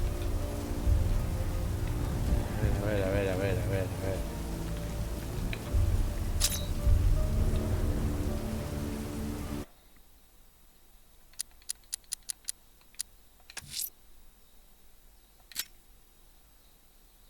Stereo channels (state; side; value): identical; both; correlation 1.00